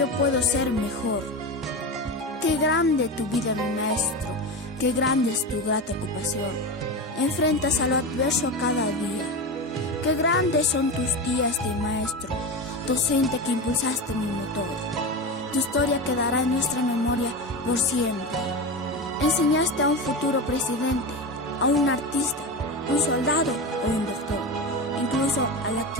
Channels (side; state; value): both; normal; correlation 0.22